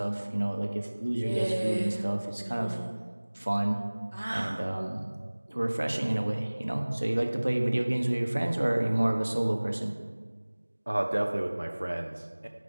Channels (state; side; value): inverted; both; correlation -1.00